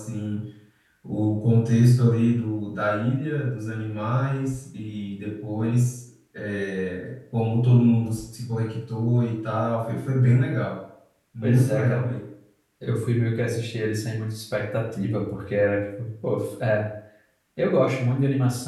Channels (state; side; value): identical; both; correlation 1.00